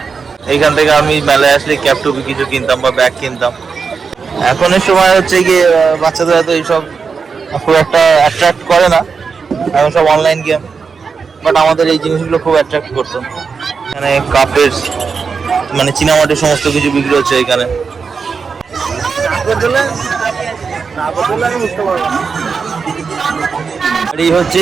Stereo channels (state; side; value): quieter; left; 5.4 dB